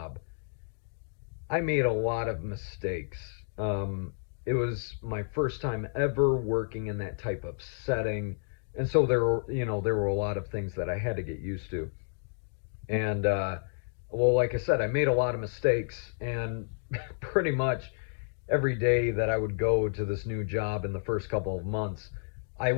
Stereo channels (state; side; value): silent; right; digital silence